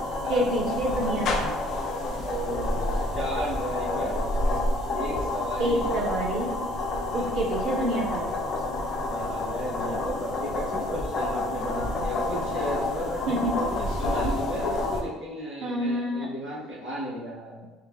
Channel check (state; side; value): normal; both; correlation 0.58